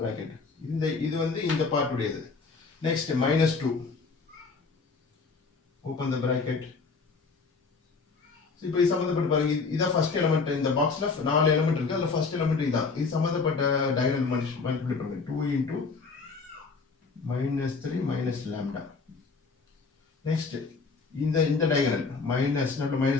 இது வந்து இந்த பார்ட் உடையது. Next minus 2 open the bracket. இப்போ இது சம்பந்தப்பட்ட பாருங்க இதான் ஃபர்ஸ்ட் எலிமெண்ட் இந்த பாக்ஸ்ல 4 எலிமெண்ட் இருக்கு அதுல ஃபர்ஸ்ட் எலிமெண்ட் இதான் இது சம்பந்தப்பட்ட டயகனல் மல்டிப்ளை பண்ணுங்க 2 into minus 3 minus lambda. Next இந்த diagonal minus not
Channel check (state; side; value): quieter; right; 4.5 dB